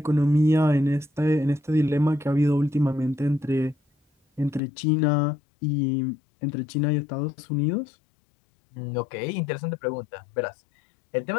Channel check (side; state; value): right; drops out; at 4.6 s